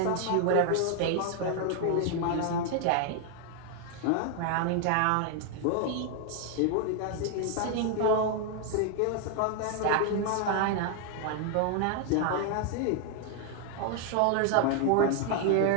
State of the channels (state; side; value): different; both; correlation 0.00